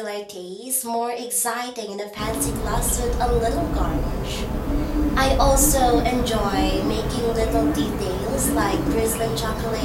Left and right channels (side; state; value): both; identical; correlation 1.00